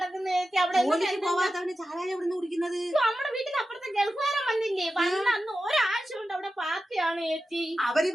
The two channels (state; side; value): normal; both; correlation 0.92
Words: ചേച്ചി. അവിടെ പോവാത്തവന് ചാരായ എവിടുന്ന് കുടിക്കുന്നത്? നമ്മുടെ വീട്ടിൽ അപ്പുറത്തെ ഗൾഫുകാരൻ വന്നില്ലേ, വന്ന അന്ന് ഒരാഴ്ച കൊണ്ട് അവിടെ പാർട്ടിയാണ് ചേച്ചി. അവര്